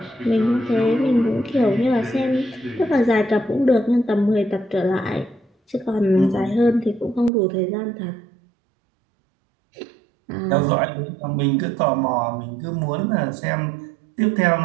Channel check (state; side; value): drops out; left; at 7.3 s